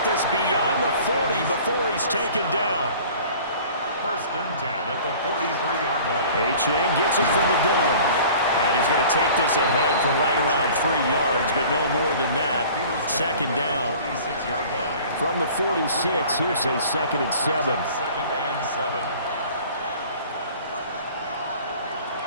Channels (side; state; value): both; inverted; correlation -0.46